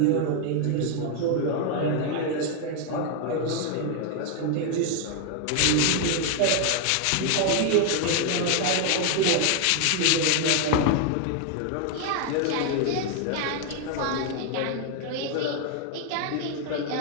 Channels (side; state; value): both; different; correlation 0.00